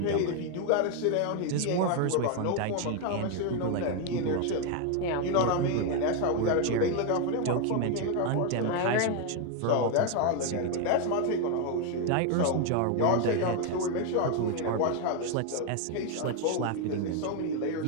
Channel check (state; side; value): different; both; correlation 0.01